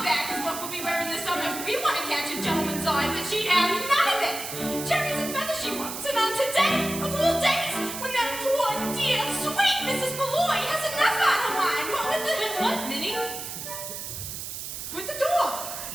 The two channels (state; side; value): noise; right; hiss, 7 dB below the sound